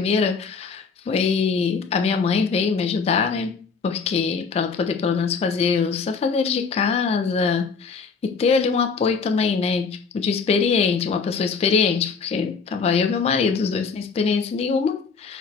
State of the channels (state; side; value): quieter; right; 5.2 dB